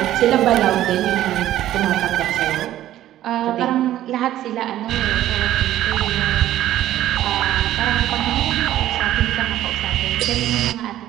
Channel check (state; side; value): quieter; left; 13.3 dB